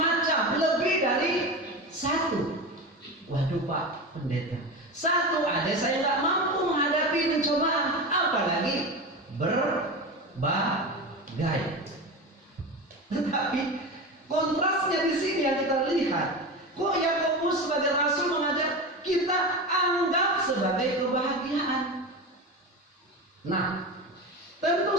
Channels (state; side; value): normal; both; correlation 0.24